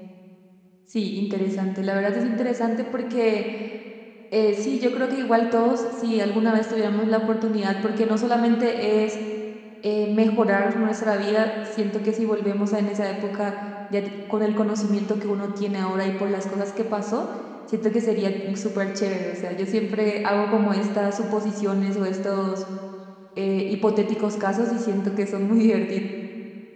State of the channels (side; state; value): both; identical; correlation 1.00